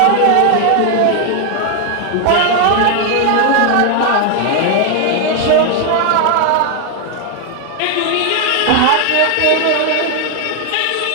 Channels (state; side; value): different; both; correlation 0.00